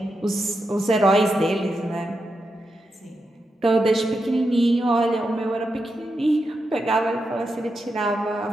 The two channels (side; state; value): both; normal; correlation 0.87